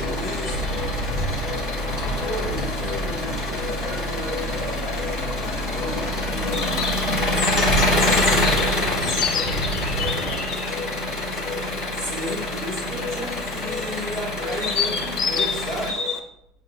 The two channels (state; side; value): normal; both; correlation 0.36